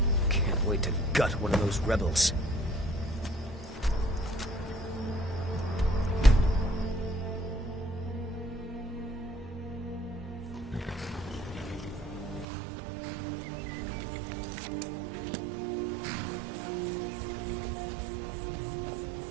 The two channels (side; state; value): left; drops out; at 12.5 s